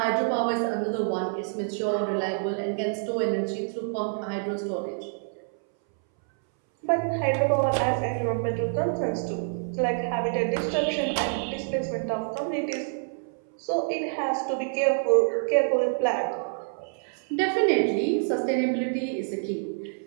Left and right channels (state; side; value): silent; left; 60 dB below the other